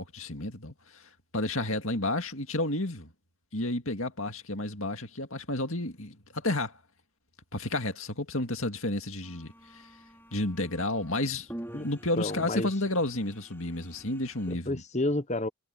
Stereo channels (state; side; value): normal; both; correlation 0.21